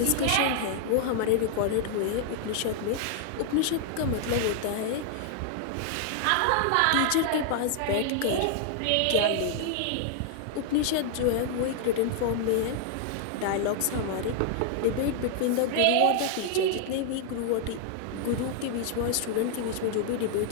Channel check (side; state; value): both; different; correlation 0.00